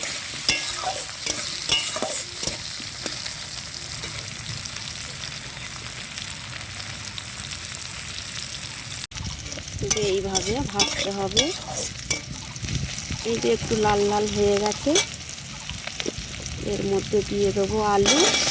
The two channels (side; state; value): both; identical; correlation 1.00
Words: এইভাবে ভাজতে হবে। এই যে একটু লাল লাল হয়ে গেছে, এর মধ্যে দিয়ে দেবো আলু